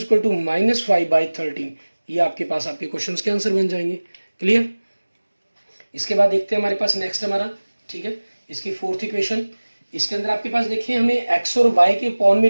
-5/13। ये आपके पास आपके क्वेश्चंस के आंसर बन जाएंगे। क्लियर। इसके बाद देखते हैं हमारे पास नेक्स्ट हमारा, ठीक है, इसकी फोर्थ इक्वेशन। इसके अंदर आपके पास देखिए हमें x और y के पॉन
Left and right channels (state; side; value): inverted; both; correlation -1.00